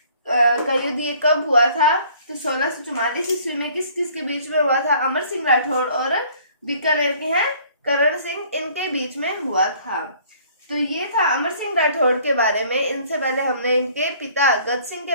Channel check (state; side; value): inverted; both; correlation -0.56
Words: का युद्ध ये कब हुआ था, तो 1644 ईस्वी में। किस किस के बीच में हुआ था, अमर सिंह राठौड़ और बीकानेर के हैं करण सिंह, इनके बीच में हुआ था। तो ये था अमर सिंह राठौड़ के बारे में। इनसे पहले हमने इनके पिता गद सिंह